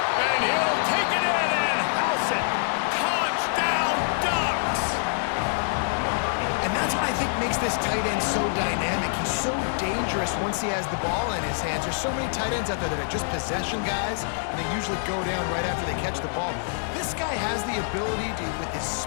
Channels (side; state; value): right; silent; 61 dB below the other